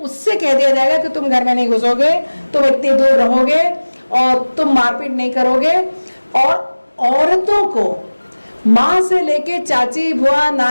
उससे कह दिया जाएगा कि तुम घर में नहीं घुसोगे, तुम इतनी दूर रहोगे और तुम मारपीट नहीं करोगे। और औरतों को माँ से लेके चाची, बुआ,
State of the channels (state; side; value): inverted; both; correlation -1.00